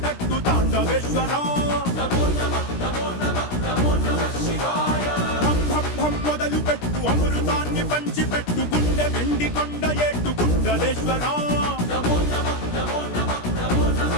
పెట్టు తాండవేశ్వర. భం భం భం మొదలు పెట్టు అమృతాన్ని పంచి పెట్టు గుండె వెండి కొండ ఏటు గుండలేశ్వర.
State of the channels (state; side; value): late; right; 17 ms